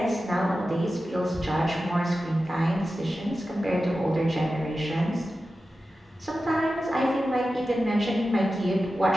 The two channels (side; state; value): both; normal; correlation 0.93